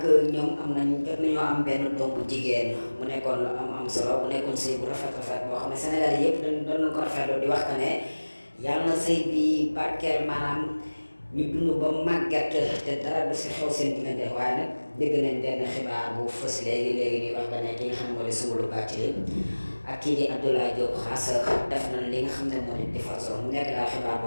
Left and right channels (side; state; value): both; inverted; correlation -1.00